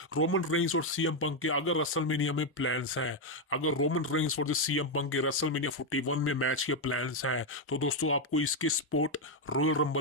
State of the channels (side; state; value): both; normal; correlation 0.03